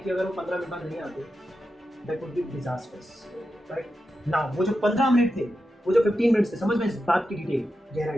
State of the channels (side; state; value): both; normal; correlation 0.89